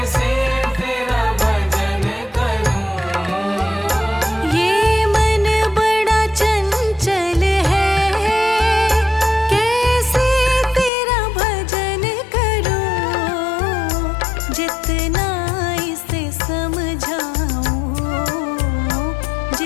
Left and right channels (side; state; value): right; drops out; at 10.9 s